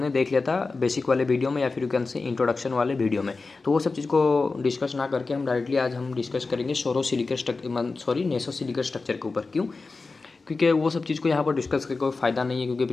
देख लिया था बेसिक वाले वीडियो में या फिर यू कैन से इंट्रोडक्शन वाले वीडियो में। तो वो सब चीज़ को डिस्कस ना करके हम डायरेक्टली आज हम डिस्कस करेंगे नेसो सिलिकेट स्ट्रक्चर के ऊपर। क्यों? क्योंकि वो सब चीज़ को यहाँ पर डिस्कस करके कोई फ़ायदा नहीं है, क्योंकि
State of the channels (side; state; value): right; quieter; 3.9 dB